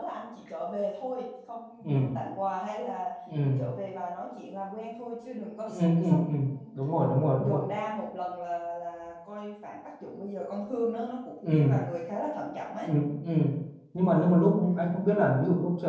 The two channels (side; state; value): both; identical; correlation 1.00